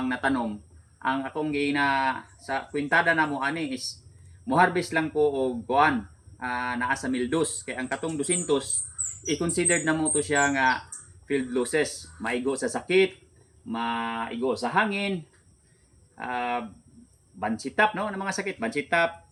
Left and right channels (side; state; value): both; identical; correlation 1.00